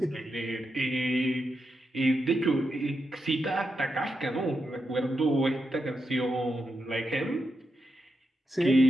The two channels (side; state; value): both; normal; correlation 0.86